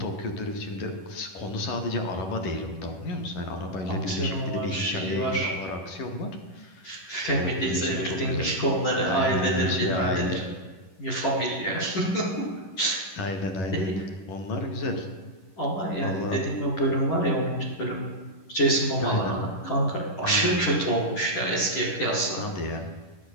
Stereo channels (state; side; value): late; right; 11 ms